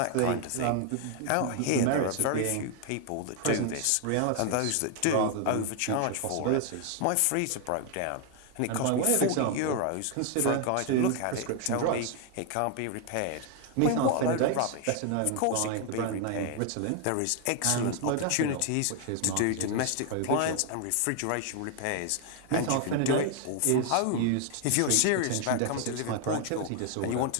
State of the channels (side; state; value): both; different; correlation 0.00